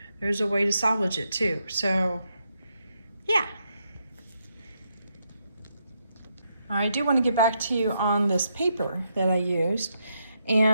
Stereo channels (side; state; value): both; inverted; correlation -0.80